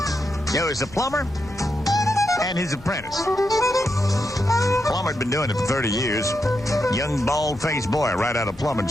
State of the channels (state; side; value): normal; both; correlation 0.84